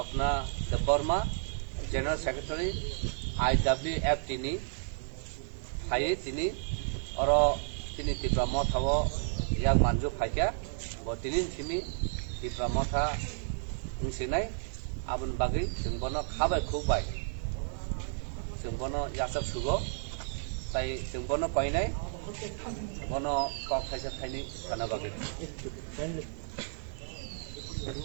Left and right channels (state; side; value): silent; left; digital silence